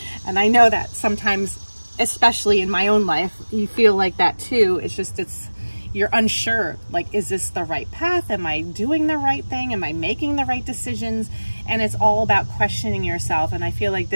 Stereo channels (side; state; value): both; inverted; correlation -1.00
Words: And I know that sometimes, especially in my own life, you feel like that too. It's just, you're unsure, like, is this the right path? Am I doing the right thing? Am I making the right decisions? And it's all about questioning yourself. And I feel like